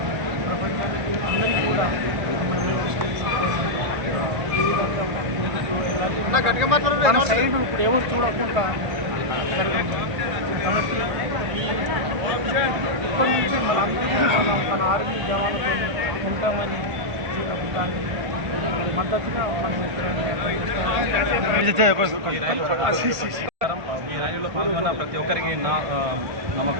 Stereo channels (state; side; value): late; left; 1.5 ms